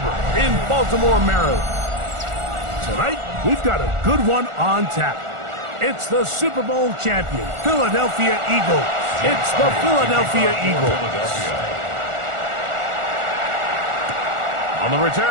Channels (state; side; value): late; left; 1.4 ms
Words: in Baltimore, Maryland. Tonight, we've got a good one on tap. It's the Super Bowl champion, Philadelphia Eagles. It's the Philadelphia Eagles. On the